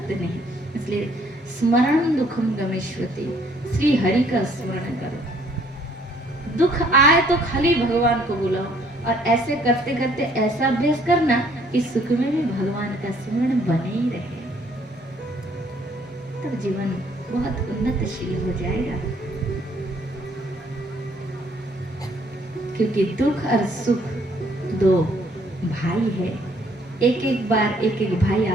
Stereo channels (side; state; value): both; normal; correlation 0.63